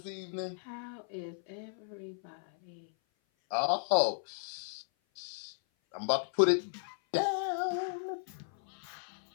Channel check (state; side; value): silent; right; 54 dB below the other